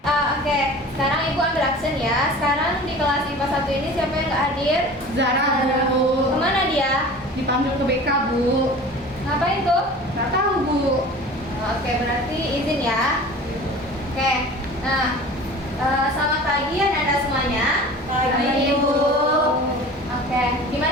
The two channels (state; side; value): normal; both; correlation 0.40